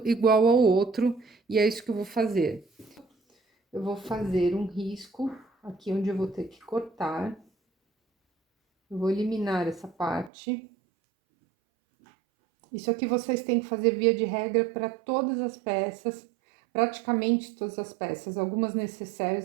igual ao outro, e é isso que eu vou fazer. Eu vou fazer um risco aqui onde eu vou ter que cortar. Eu vou eliminar essa parte. Isso aqui vocês têm que fazer via de regra para todas as peças, praticamente todas as peças. Algumas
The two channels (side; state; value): left; drops out; at 10.3 s